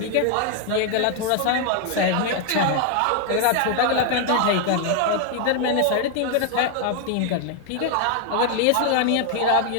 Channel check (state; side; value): different; both; correlation 0.00